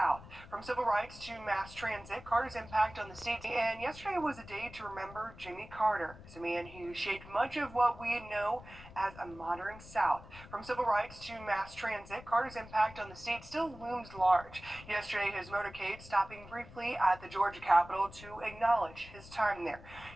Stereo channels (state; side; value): noise; left; rumble, 17 dB below the sound